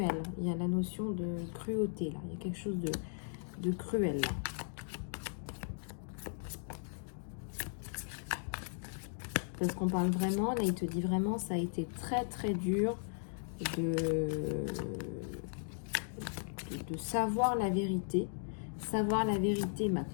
Il y a la notion de cruauté là. Il y a quelque chose de cruel là. Parce qu'on parle vraiment, là il te dit vraiment, ça a été très très dur de savoir la vérité. Savoir la vérité m'a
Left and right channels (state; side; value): silent; right; digital silence